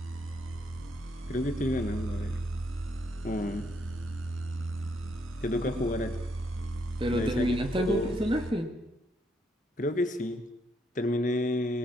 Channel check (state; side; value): normal; both; correlation 0.74